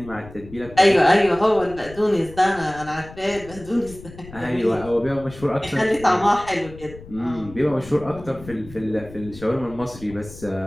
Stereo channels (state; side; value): noise; left; rumble, 17 dB below the sound